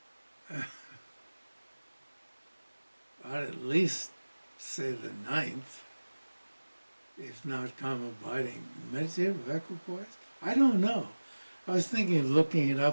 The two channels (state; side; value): inverted; both; correlation -1.00